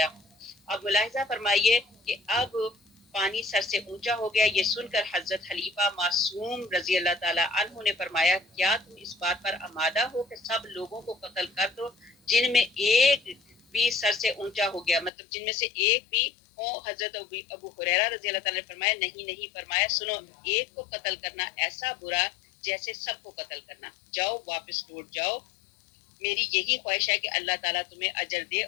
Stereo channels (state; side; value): drops out; right; at 15.1 s